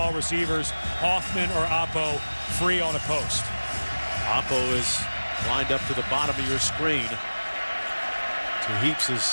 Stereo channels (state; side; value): inverted; both; correlation -1.00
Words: receivers, Hoffman or Oppo, free on a post. Oppo is lined up to the bottom of your screen. To